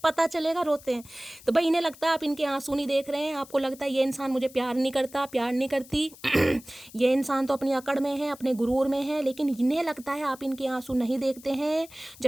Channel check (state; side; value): noise; left; hiss, 21 dB below the sound